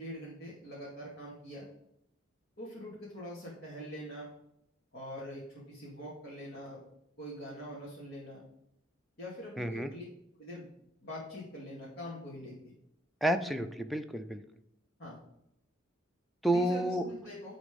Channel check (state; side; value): normal; both; correlation 0.70